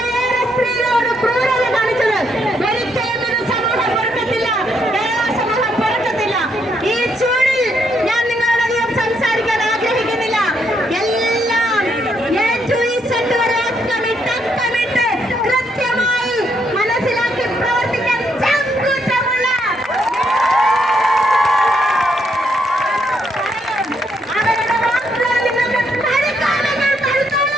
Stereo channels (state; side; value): normal; both; correlation 0.75